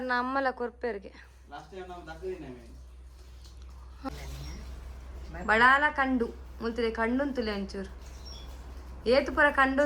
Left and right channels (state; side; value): identical; both; correlation 1.00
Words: ನಮ್ಮಲ್ಲ ಕೊರ್ಪೇರ್ಗೆ ಬಡಾಲ ಕಂಡು ಮುಂತಿದೆ ಕಂಡುಂತುಲೆ ಒಂಚೂರು ಏತು ಪುರ